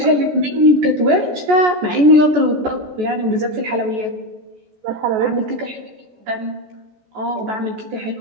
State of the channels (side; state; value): left; late; 14 ms